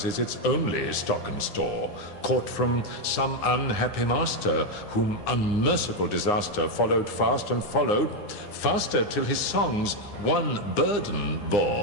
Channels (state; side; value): late; right; 9.7 ms